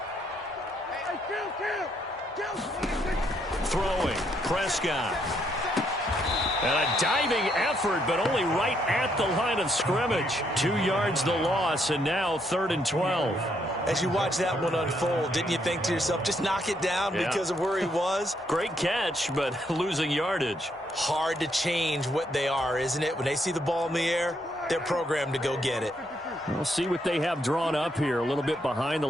Throwing, Prescott. And a diving effort, but only right at the line of scrimmage. 2 yards the loss, and now 3rd and 12. As you watch that one unfold, didn't you think to yourself, just knock it down because of where he was? Great catch, but losing yardage. Hard to change what they are, isn't it? When they see the ball in the air, they're programmed to go get it. We'll see what they have drawn up here. A little bit behind the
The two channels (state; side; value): normal; both; correlation 0.74